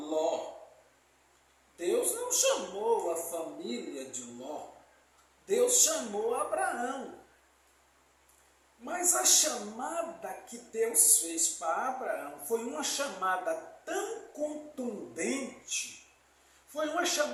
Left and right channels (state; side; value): identical; both; correlation 1.00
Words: Deus não chamou a família de Ló. Deus chamou Abraão. Mas a chamada que Deus fez para Abraão foi uma chamada tão contundente, foi uma